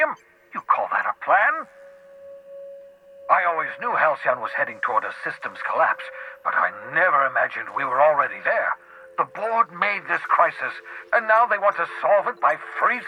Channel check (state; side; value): identical; both; correlation 1.00